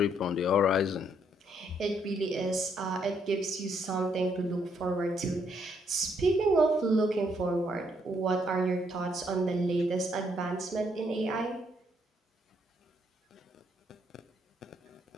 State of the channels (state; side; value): normal; both; correlation 0.72